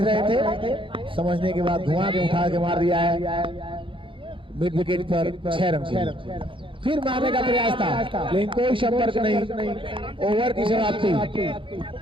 थे, समझने के बाद घुमा के उठा के मार दिया है मिड विकेट पर। 6 रन। फिर मारने का प्रयास था लेकिन कोई संपर्क नहीं। ओवर की समाप्ति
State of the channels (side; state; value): left; late; 0.25 ms